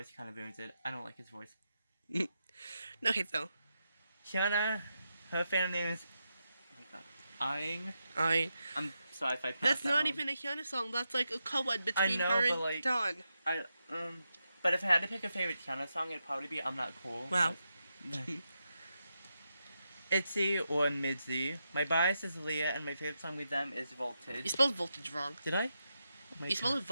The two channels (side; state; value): both; inverted; correlation -0.86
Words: kind of ruins it. I don't like his voice. Okay, so. Hyuna, her fan name is... Oh my god. Aang. I'm sorry if I pronounced That's that not wrong. even a Hyuna song. That's like a co-ed between know, her but, and like, Dawn. But if I had to pick a favorite Hyuna song, it'd probably be I'm Not Cool. Wow. ITZY or MIDZY. My bias is Leah, and my favorite song with them is You Voltage. spelled voltage wrong. Did I? Oh my You spelled